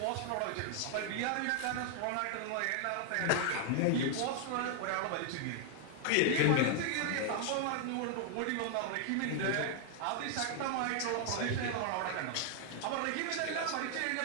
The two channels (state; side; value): different; both; correlation 0.00